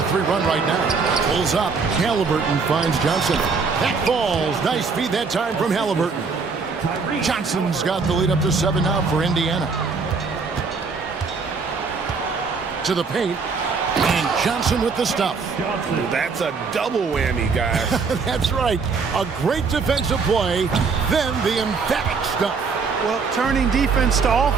run right now. Pulls up. Halliburton finds Johnson. That falls. Nice feed that time from Halliburton. Johnson's got the lead up to 7 now for Indiana. To the paint, and Johnson with the stuff. That's a double whammy, guys. That's right. A great defensive play, then the emphatic stuff. Well, turning defense to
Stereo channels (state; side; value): quieter; left; 4.9 dB